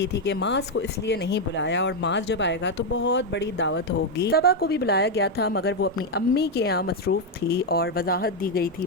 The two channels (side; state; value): both; normal; correlation 0.02